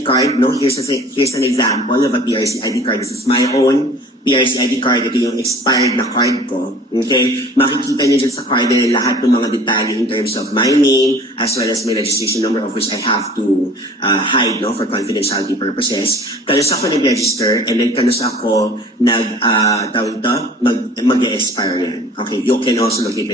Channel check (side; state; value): both; normal; correlation 0.47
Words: card, no, here's an example of a PRC ID card. This is my own PRC ID card. Ito yung expired na card ko. Okay? Makikita niyo dyan sa card na lahat ng mga detalye in terms of my name as well as my registration number, of which I have to hide, no, for confidentiality purposes. Kanus ako nag-register and then kanus ako mag-expire yan. Okay? You can also locate